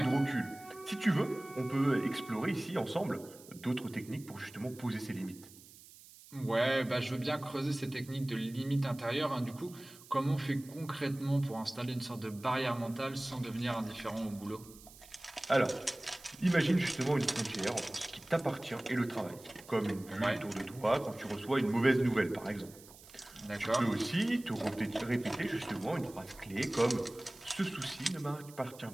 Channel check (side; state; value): right; noise; hiss, 20 dB below the sound